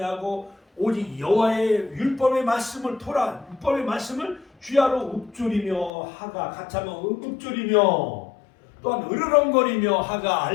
오직 여호와의 율법의 말씀을 율법의 말씀을 귀하로 읊조리며 하가 같이 하면 읊조리며 또한 으르렁거리며 하가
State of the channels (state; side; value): drops out; right; at 5.9 s